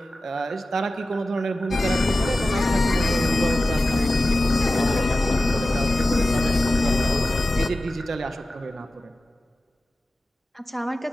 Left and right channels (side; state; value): both; normal; correlation 0.95